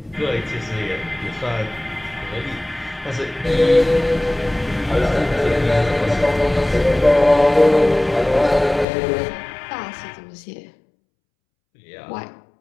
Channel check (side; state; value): right; drops out; at 8.8 s